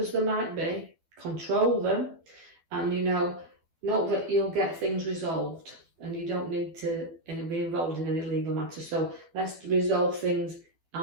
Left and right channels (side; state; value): left; late; 12 ms